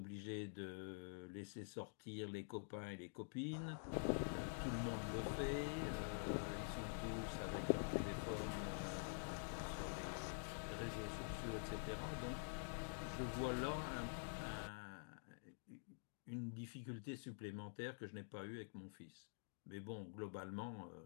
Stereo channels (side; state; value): right; silent; digital silence